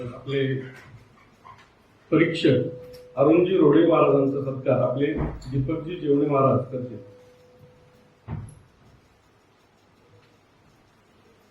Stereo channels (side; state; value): both; identical; correlation 1.00